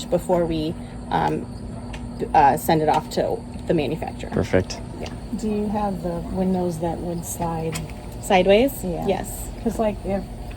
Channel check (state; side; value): identical; both; correlation 1.00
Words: before we send it off to the manufacturer. Perfect. Do you have the windows that would slide? Sideways? Yeah. Yes. Because like if